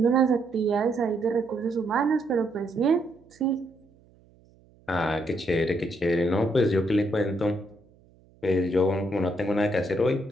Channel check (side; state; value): right; noise; hum, 30 dB below the sound